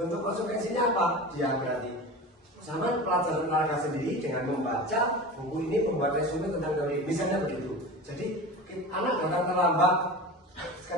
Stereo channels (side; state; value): both; normal; correlation 0.31